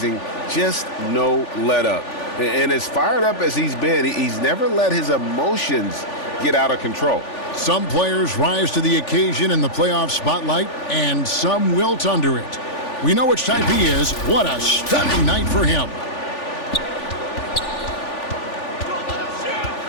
Just no let up. And as fired up as he's been, he's never let his emotions get out of control. Some players rise to the occasion in the playoff spotlight, and some wilt under it. We know which type he is. What a stunning night for him.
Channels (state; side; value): late; right; 3.4 ms